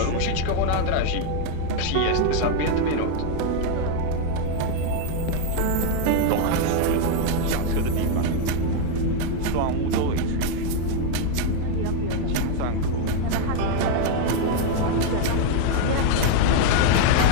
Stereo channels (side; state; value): both; different; correlation 0.01